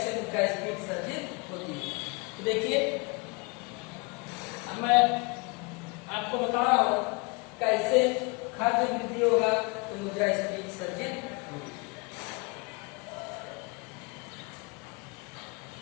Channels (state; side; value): quieter; right; 30.7 dB